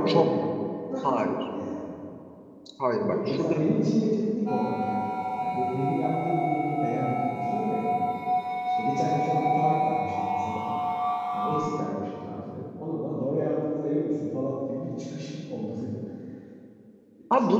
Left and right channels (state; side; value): identical; both; correlation 1.00